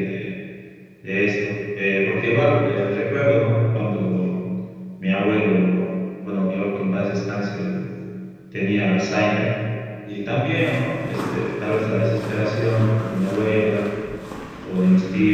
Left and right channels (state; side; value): identical; both; correlation 1.00